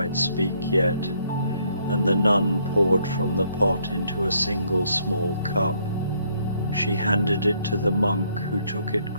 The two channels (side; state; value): both; inverted; correlation -0.69